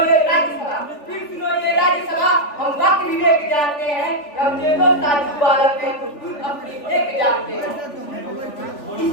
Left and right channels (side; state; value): right; late; 3.4 ms